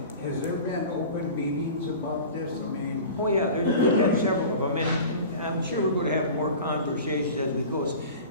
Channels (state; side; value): inverted; both; correlation -0.38